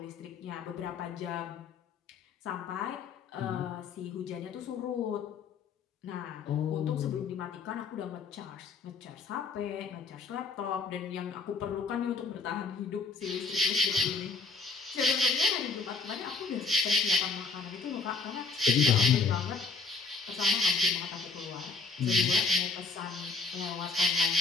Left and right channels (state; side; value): quieter; right; 4.4 dB